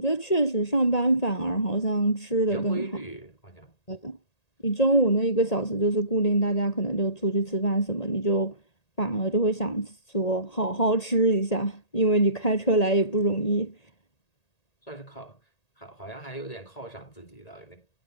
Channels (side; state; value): right; late; 1.8 ms